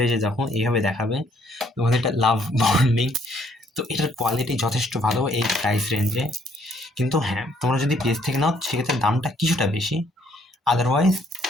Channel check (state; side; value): normal; both; correlation 0.66